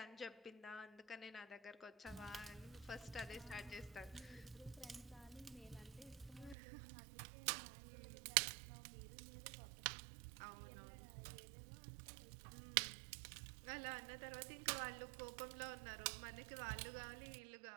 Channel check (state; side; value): drops out; left; at 6.6 s